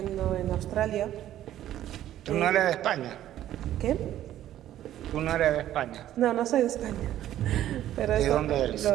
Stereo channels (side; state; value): left; quieter; 12.4 dB